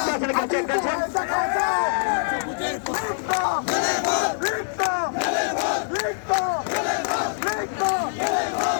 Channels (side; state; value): right; silent; 63 dB below the other